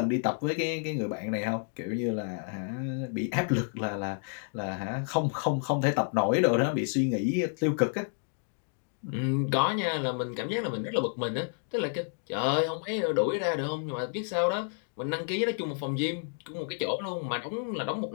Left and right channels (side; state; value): right; silent; 56 dB below the other